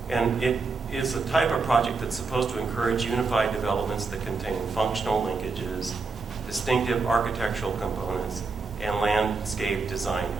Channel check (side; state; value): left; quieter; 4.3 dB